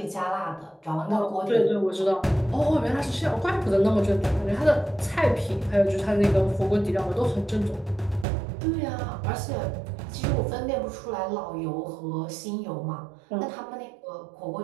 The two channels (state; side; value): drops out; left; at 8.2 s